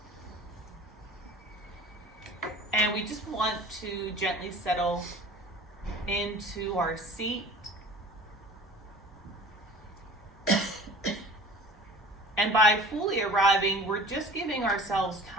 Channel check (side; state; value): both; normal; correlation 0.42